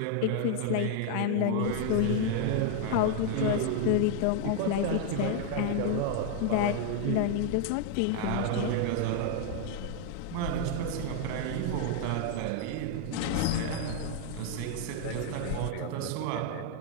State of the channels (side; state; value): both; different; correlation 0.00